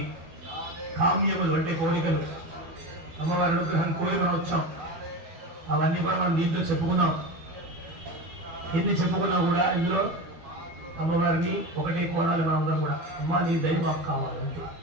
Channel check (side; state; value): left; late; 12 ms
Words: కామ్యములు అంటే కోరికలు అమ్మవారి అనుగ్రహం కోరి మనం వచ్చాం. అవన్నీ కూడా మనం దీంట్లో చెప్పుకున్నాం. ఎన్ని చెప్పుకున్నా కూడా ఇందులో అమ్మవారిని ఒకటే కోరాలి మనం అందరం కూడా. అమ్మ నీ దయ మాకు కావాలంటే